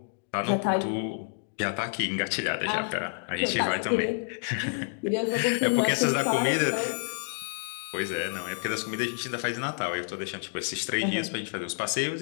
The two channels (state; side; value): silent; right; digital silence